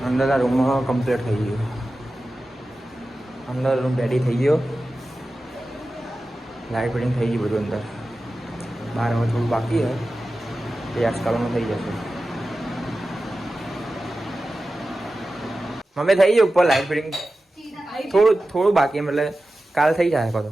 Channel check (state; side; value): normal; both; correlation 0.94